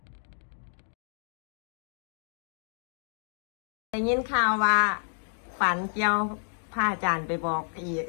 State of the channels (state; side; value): silent; right; digital silence